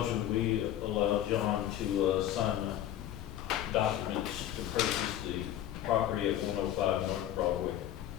we allow John to, sign the documents to purchase the property at 105 North Broadway.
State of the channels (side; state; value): right; quieter; 12.0 dB